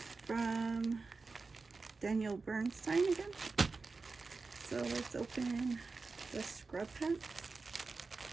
from Daniel Bernstein again. So let's open the scrub pants.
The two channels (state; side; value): quieter; left; 4.1 dB